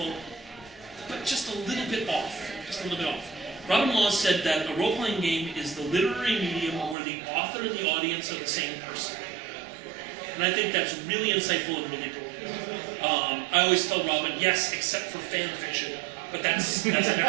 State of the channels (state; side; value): drops out; left; at 7.0 s